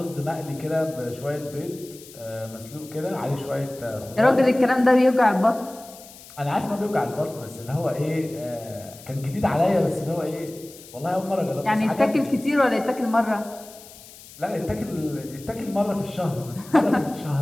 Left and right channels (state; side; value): noise; left; hiss, 19 dB below the sound